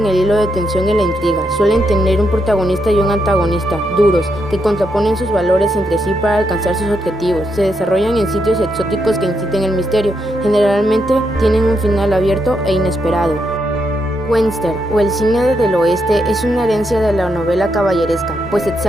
el hilo de tensión y la intriga. Suelen tener un protagonista y un antagonista, duros, que contraponen sus valores entre sí para alcanzar sus objetivos. Se desarrollan en sitios exóticos que inciten el misterio. Generalmente tienen un final abierto e inesperado. Western, o el cine del oeste, es una herencia de la novela caballeresca, pues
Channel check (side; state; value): both; normal; correlation 0.80